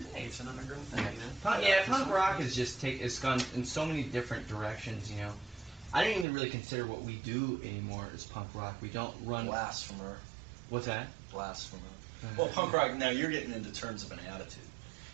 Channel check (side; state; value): left; drops out; at 6.2 s